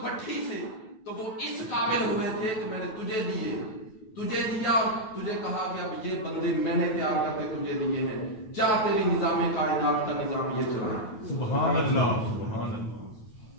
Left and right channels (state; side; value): late; right; 9.1 ms